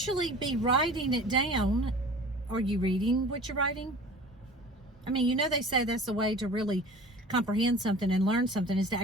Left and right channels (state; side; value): normal; both; correlation 0.42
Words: be writing it down. Are you reading what you're writing? I mean, you know, they say that's the way to really comprehend something and learn something is to